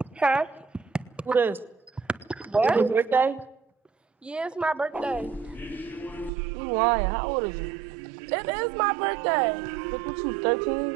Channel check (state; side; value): drops out; left; at 6.3 s